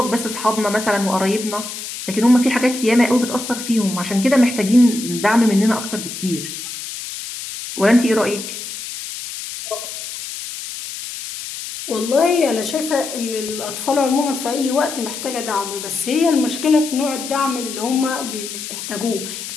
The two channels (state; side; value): noise; left; hiss, 9 dB below the sound